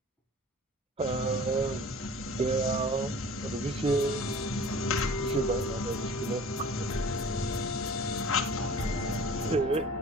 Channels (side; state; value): both; normal; correlation 0.44